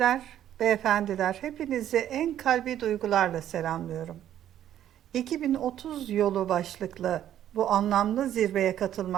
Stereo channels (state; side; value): quieter; left; 11.2 dB